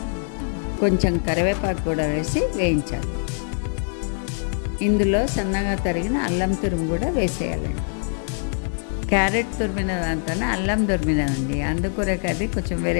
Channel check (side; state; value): right; silent; 62 dB below the other